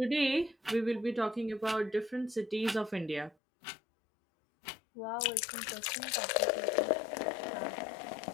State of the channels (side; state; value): right; drops out; at 3.4 s